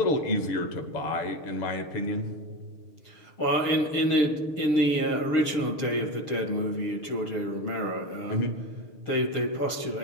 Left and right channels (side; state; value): right; late; 6.6 ms